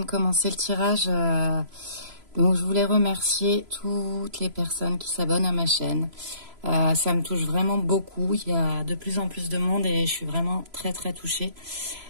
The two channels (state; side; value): late; left; 3.0 ms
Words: commencer le tirage, donc je voulais remercier toutes les personnes qui s'abonnent à ma chaîne. Ça me touche vraiment beaucoup, il y a de plus en plus de monde et je suis vraiment très très touchée.